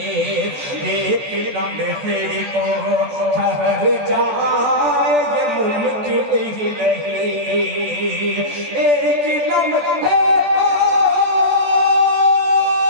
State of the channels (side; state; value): left; late; 14 ms